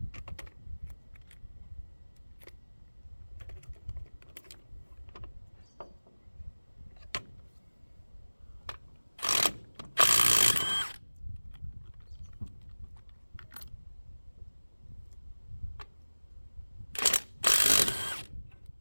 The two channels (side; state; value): both; inverted; correlation -1.00